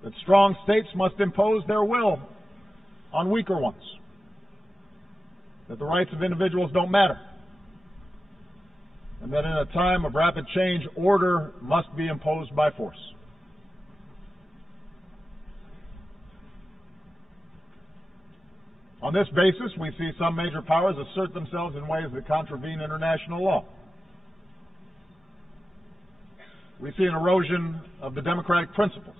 that strong states must impose their will on weaker ones, that the rights of individuals don't matter, and that in a time of rapid change, order must be imposed by force. On this basis, we see some major powers assert themselves in ways that contravene international law. We see an erosion of the democratic principles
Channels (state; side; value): normal; both; correlation 0.94